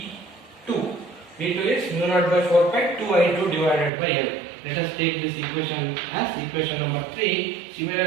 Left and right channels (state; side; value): drops out; left; at 3.9 s